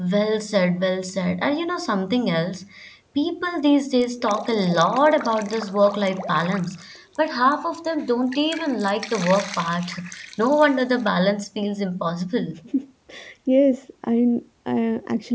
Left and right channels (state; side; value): identical; both; correlation 1.00